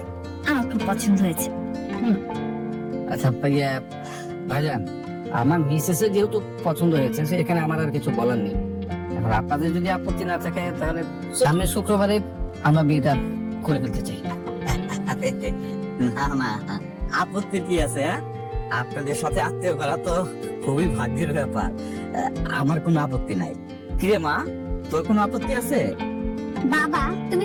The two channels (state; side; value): identical; both; correlation 1.00